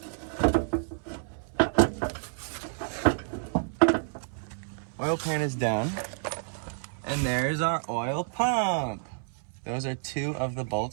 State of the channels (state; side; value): silent; left; 58 dB below the other